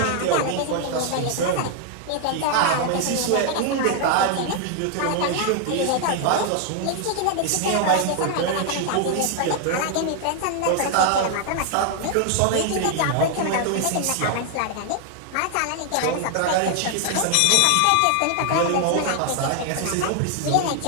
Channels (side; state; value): both; different; correlation 0.00